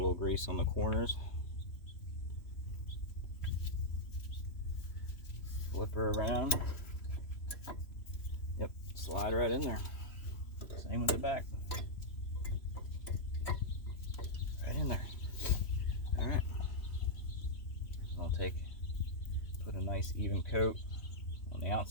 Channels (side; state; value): right; late; 3.0 ms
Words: grease on the corners. Flip her around. Yep, slide right in there. Same with the back. Right in there. All right. I'll put a nice even coat on the